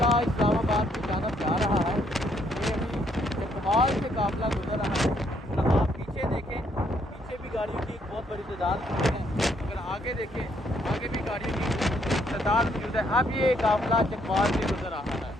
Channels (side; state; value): both; normal; correlation 0.71